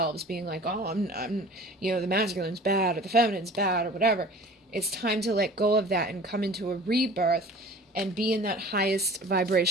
being like, oh, I'm the masculine's bad, or the feminine's bad, or whatever. It's time to let go of that and come into a rebirth and be in that highest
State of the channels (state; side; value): normal; both; correlation 0.43